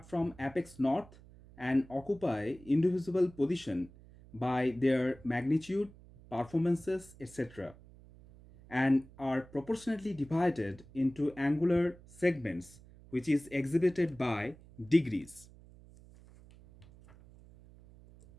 from apex north and occupy indivisible position by their magnitude, performances, etc., and are proportionately divided into angular segments, which is exhibited by degrees.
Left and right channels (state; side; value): noise; right; hum, 22 dB below the sound